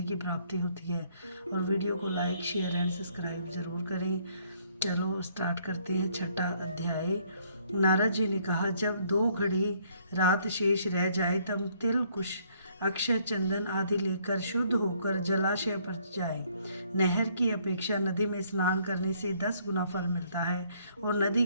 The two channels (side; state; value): both; inverted; correlation -0.65